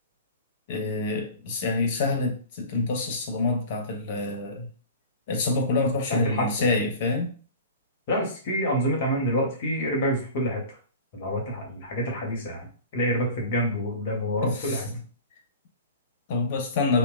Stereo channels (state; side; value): inverted; both; correlation -0.37